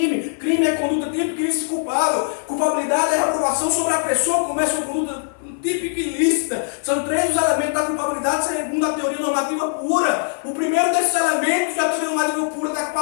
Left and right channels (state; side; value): silent; right; 56 dB below the other